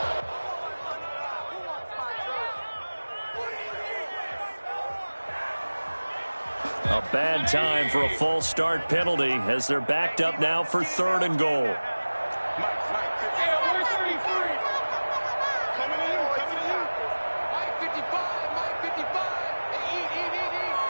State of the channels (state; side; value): inverted; both; correlation -1.00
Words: A bad time for a false start penalty as they're backed up now for 3rd and goal.